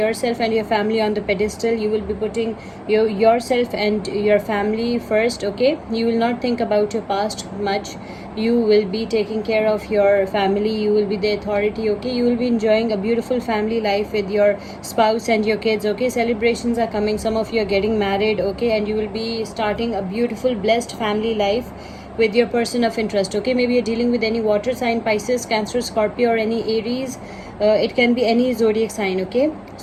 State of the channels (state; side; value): identical; both; correlation 1.00